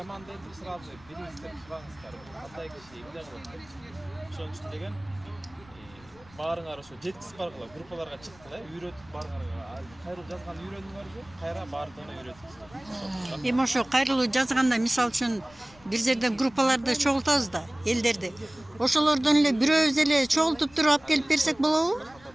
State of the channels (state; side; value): noise; left; rumble, 25 dB below the sound